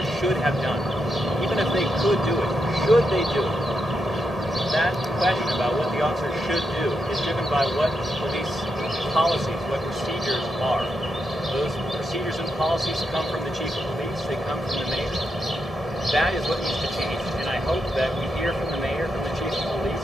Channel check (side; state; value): both; normal; correlation 0.83